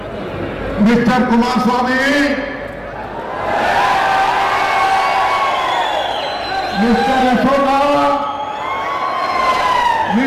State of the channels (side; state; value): both; identical; correlation 1.00